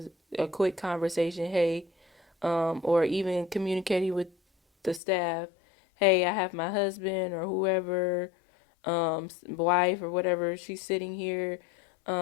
a quick conversation, hey, or even communicating with the staff, hey, I have my husband or whoever, wife or whatever, she's sitting here.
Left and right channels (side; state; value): right; drops out; at 5.0 s